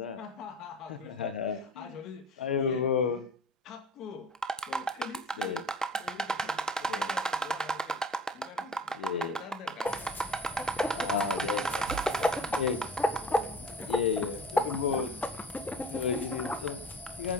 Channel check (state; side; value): normal; both; correlation 0.39